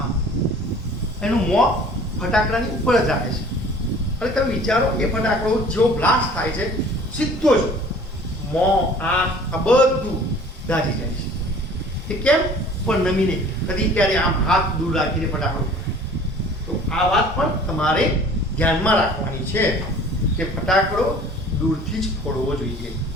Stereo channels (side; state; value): both; normal; correlation 0.49